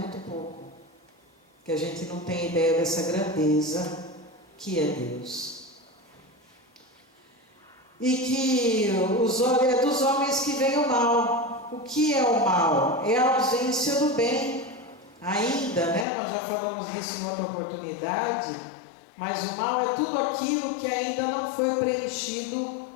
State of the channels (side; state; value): right; drops out; at 16.1 s